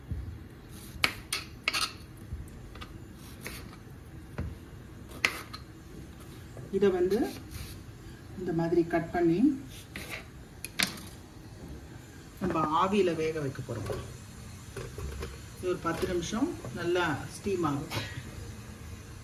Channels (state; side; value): identical; both; correlation 1.00